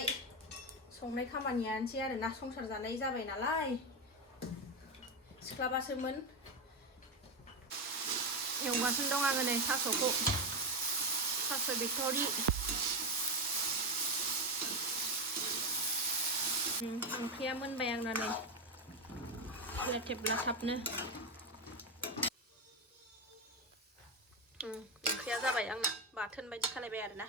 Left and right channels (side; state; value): both; normal; correlation 0.11